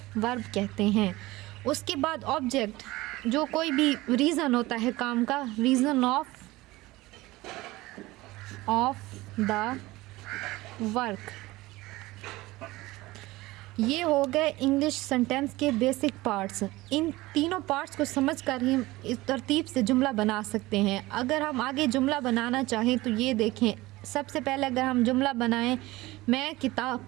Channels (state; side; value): quieter; left; 19.4 dB